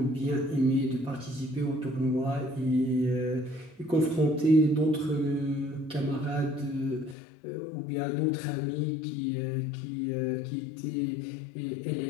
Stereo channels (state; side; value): drops out; right; at 7.2 s